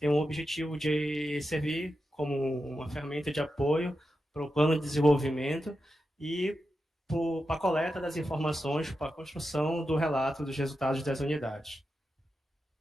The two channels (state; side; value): normal; both; correlation 0.89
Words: o objetivo de servir como uma ferramenta de apoio para o plano de desenvolvimento e para a coleta das informações, para a construção do relato dos resultados das unidades.